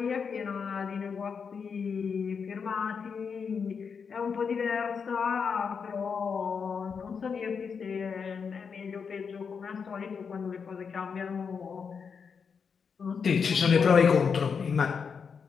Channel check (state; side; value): quieter; right; 6.1 dB